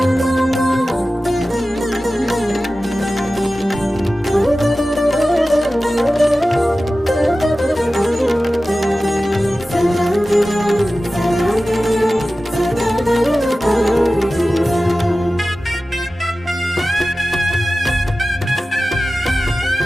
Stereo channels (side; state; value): both; normal; correlation 0.95